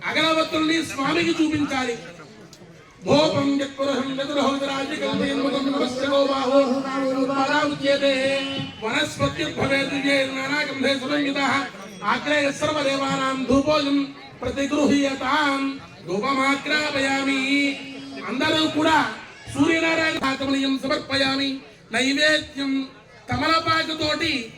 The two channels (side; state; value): both; identical; correlation 1.00